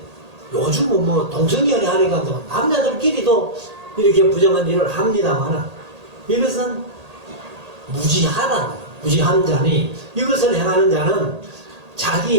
요즘은 뭐 동성연애 하니까 또 남자들끼리도 이렇게 부정한 일을 합니다만, 이것은 무지한 자니, 이것을 행하는 자는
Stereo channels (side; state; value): left; late; 1.8 ms